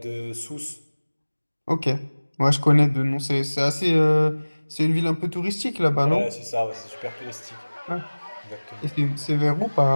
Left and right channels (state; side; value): inverted; both; correlation -1.00